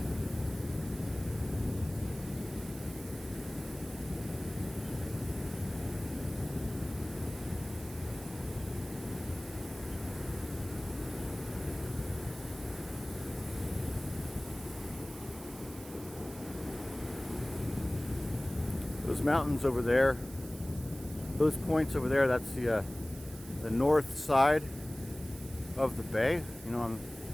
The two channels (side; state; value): right; noise; hiss, 17 dB below the sound